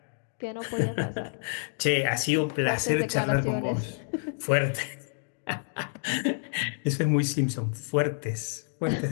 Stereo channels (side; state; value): right; silent; digital silence